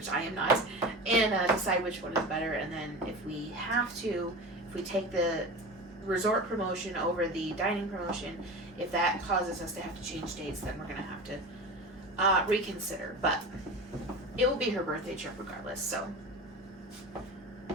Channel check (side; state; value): both; normal; correlation 0.30